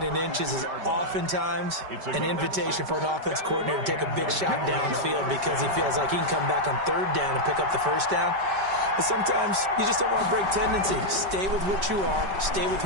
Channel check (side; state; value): left; late; 5.2 ms